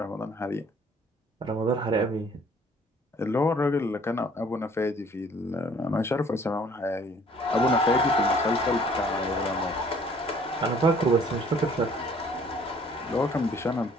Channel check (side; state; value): both; normal; correlation 0.57